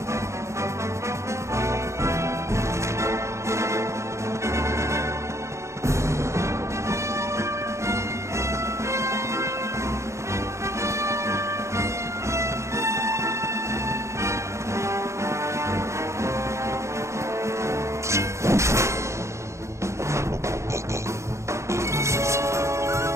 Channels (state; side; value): late; left; 0.14 ms